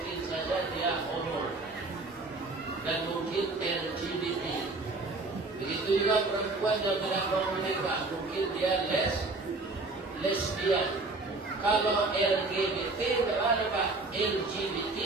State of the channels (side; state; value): left; quieter; 3.3 dB